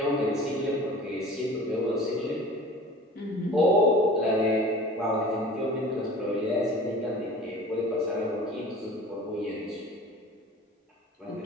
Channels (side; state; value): both; normal; correlation 0.42